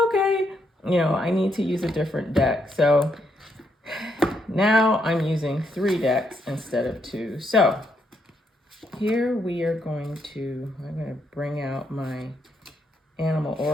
I need to use a different deck. So now I'm using 3 decks instead of 2. So here I'm going to bring out my Animal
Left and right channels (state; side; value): normal; both; correlation 0.77